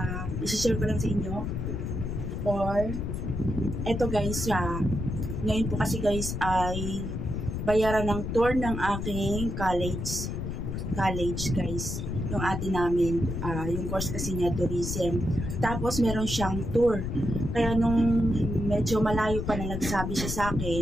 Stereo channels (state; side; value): noise; left; rumble, 4 dB below the sound